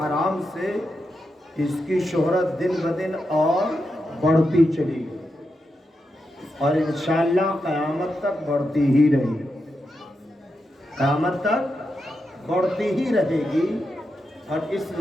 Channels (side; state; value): both; normal; correlation 0.86